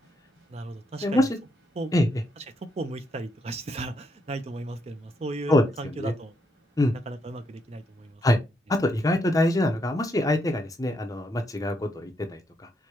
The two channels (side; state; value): both; normal; correlation 0.77